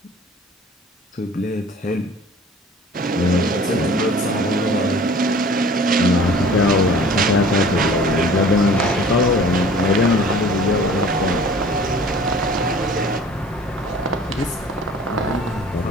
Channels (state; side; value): normal; both; correlation 0.47